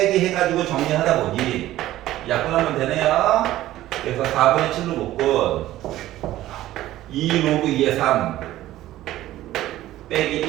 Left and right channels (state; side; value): quieter; left; 14.8 dB